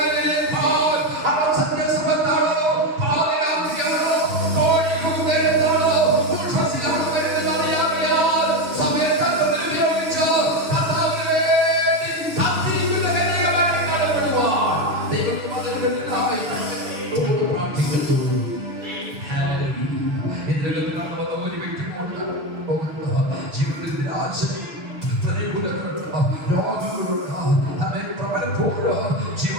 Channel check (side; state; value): left; late; 6.6 ms